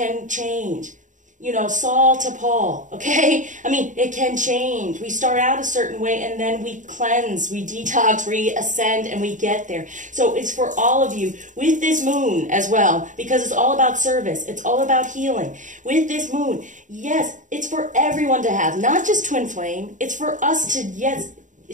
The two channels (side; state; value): left; late; 0.37 ms